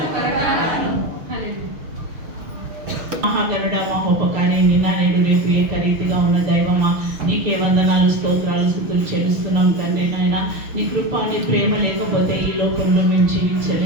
త్వరగా రాము. హల్లెలూయా. మహాగరుడ, మహోపకారి, నిన్న నేడు రేపు ఏకరీతిగా ఉన్న దైవమా, నీకే వందనాలు, స్తోత్రాలు, స్తుతులు చెల్లిస్తున్నాం తండ్రి. నాయన, నీ కృప, నీ ప్రేమ లేకపోతే ఈ లోకంలో మేము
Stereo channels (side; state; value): left; late; 6.5 ms